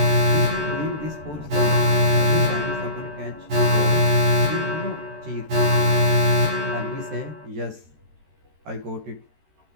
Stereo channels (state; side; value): late; left; 13 ms